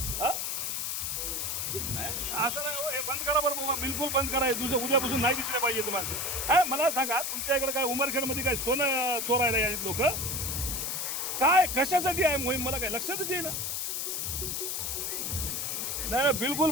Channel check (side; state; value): left; noise; hiss, 1 dB below the sound